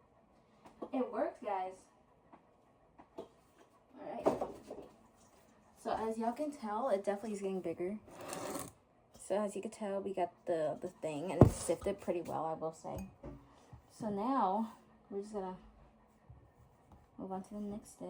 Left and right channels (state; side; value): identical; both; correlation 1.00